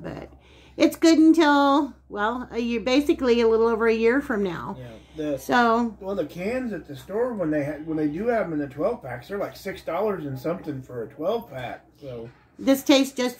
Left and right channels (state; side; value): identical; both; correlation 1.00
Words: But it's good until, well, a year, basically a little over a year from now. Yeah. Well, the cans at the store, when they do have them in the 12-packs, they're like $6 and something for a 12-pack. So this tastes just